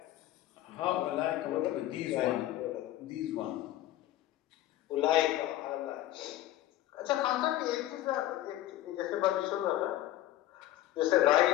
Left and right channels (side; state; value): right; quieter; 14.3 dB